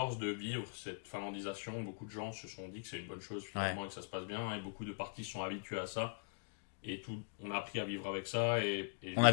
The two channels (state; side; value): silent; right; digital silence